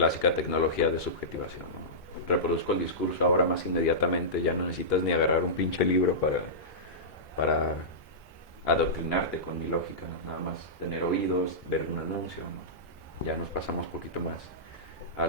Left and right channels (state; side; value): normal; both; correlation -0.16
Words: tecnología de subjetivación, ¿no? Reproduzco el discurso ahora más inmediatamente, ya no necesitas ni agarrar un pinche libro para adoctrinarte con mi lógica, nada más tener oídos, ver un anuncio, ¿no? Ya nos pasamos un poquito más a